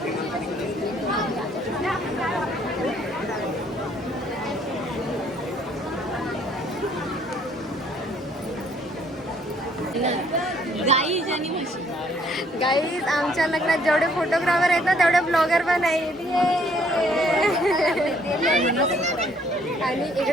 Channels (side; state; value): both; normal; correlation 0.63